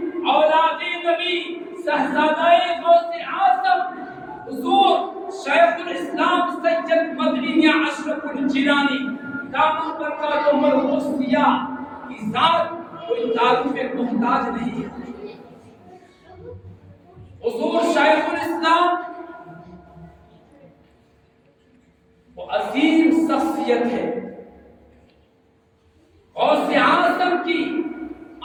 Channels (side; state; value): both; identical; correlation 1.00